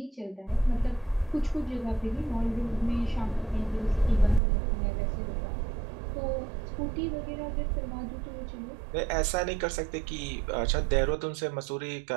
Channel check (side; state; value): left; drops out; at 4.4 s